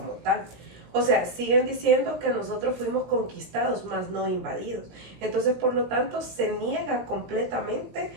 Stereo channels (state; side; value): late; left; 17 ms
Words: tal. O sea, siguen diciendo que nosotros fuimos conquistados, más no invadidos. Entonces, por lo tanto, se niega completamente